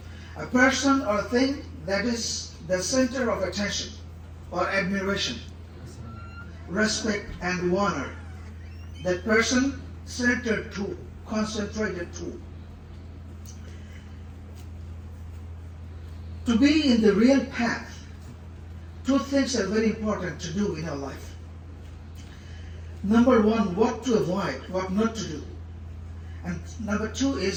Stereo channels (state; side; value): identical; both; correlation 1.00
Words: A person or thing that is the center of attention or admiration, respect and honor. That person centered to, concentrated to. To be in the real path, two things are very important to do in our life. Number one, what to avoid, what not to do. And number two